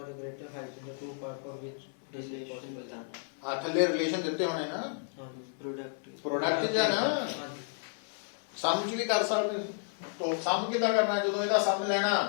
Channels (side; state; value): right; silent; 56 dB below the other